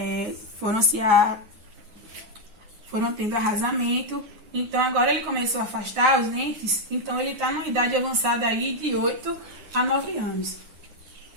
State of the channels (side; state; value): left; late; 9.7 ms